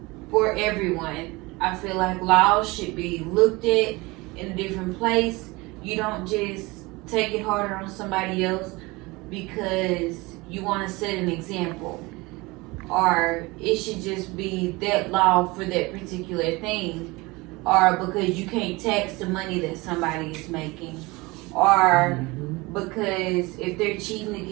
for everyone. I feel like laws should be looked at in a different place. You don't just take it harder on somebody else because you want to set an example, or it should just be that law for that particular thing, or because you can't tax the money that somebody is making, or because if they're cheating to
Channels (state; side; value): quieter; left; 23.3 dB